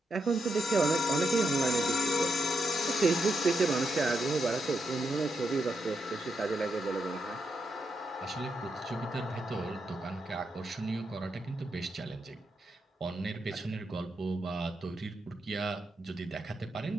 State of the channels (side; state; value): both; normal; correlation 0.82